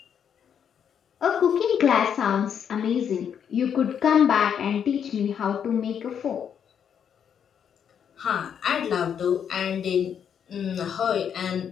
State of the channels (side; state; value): right; quieter; 8.1 dB